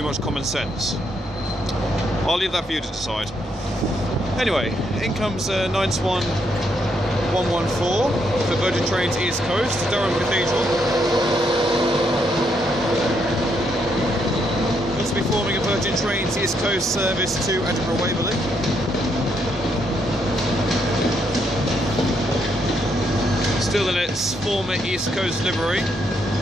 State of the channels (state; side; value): normal; both; correlation 0.76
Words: much common sense? I'll leave that for you to decide. Anyway, in comes 92114 for Virgin Trains East Coast, Durham Cathedral. Looks to be forming a Virgin Trains East Coast service to Edinburgh Waverley. Still in its former East Coast livery.